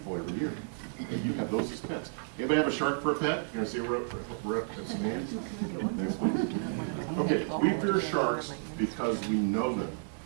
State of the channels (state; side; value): silent; left; digital silence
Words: every year. And you have those as pets. Anybody have a shark for a pet? You want to see a rep? Some hands? Next, please. Okay, we fear sharks because we know them.